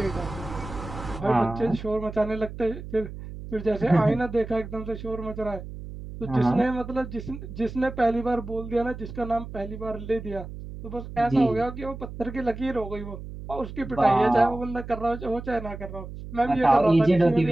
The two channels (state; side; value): noise; right; hum, 11 dB below the sound